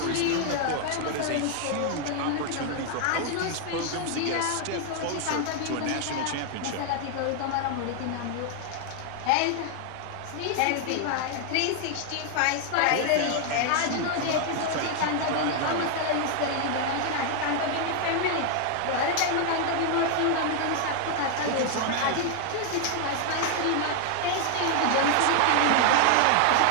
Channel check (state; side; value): different; both; correlation 0.00